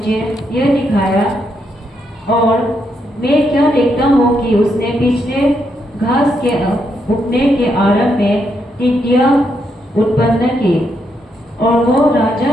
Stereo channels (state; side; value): normal; both; correlation 0.79